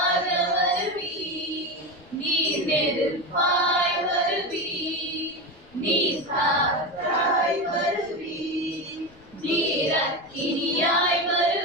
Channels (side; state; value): left; noise; rumble, 28 dB below the sound